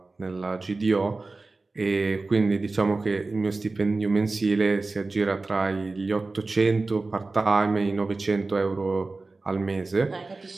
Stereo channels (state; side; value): quieter; left; 3.5 dB